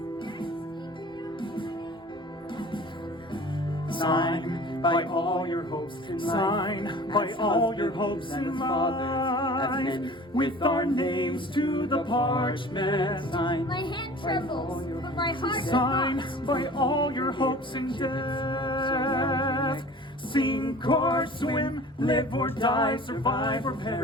Sign by all your hopes in life, Sign by all your hopes in life, with our names to the parchment. Sign My hand trembles, but my heart does Sign not. by all your hopes in death. Sink or swim, live or die, survive or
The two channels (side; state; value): both; normal; correlation 0.43